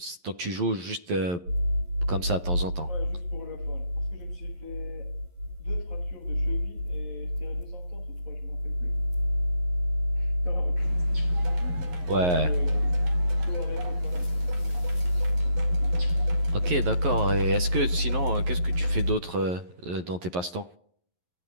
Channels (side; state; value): left; late; 11 ms